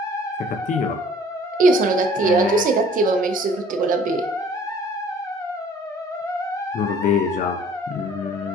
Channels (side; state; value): both; normal; correlation 0.53